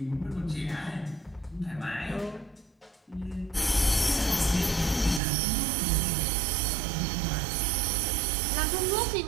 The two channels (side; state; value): left; drops out; at 5.2 s